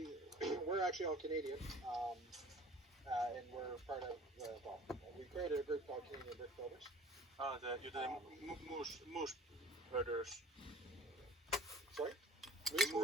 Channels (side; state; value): both; normal; correlation 0.46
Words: actually all Canadian, and we're part of we created a group called Canadian Brick Builders. You're the moose herders. Sorry?